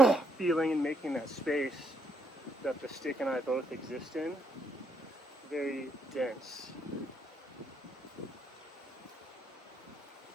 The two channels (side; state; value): both; normal; correlation 0.75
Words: feeling and making that space that the stick and I both exist in very dense.